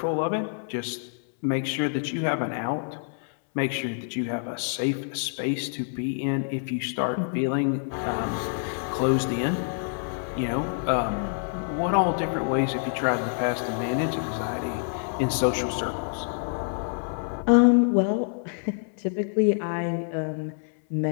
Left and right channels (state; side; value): silent; right; 60 dB below the other